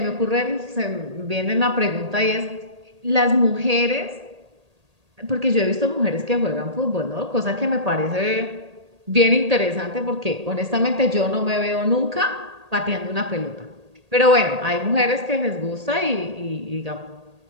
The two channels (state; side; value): late; left; 1.8 ms